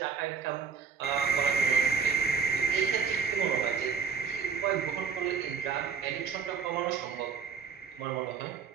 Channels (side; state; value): left; quieter; 6.2 dB